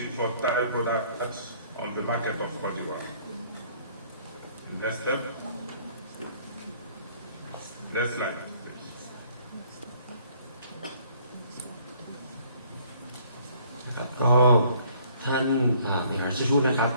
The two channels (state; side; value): inverted; both; correlation -0.60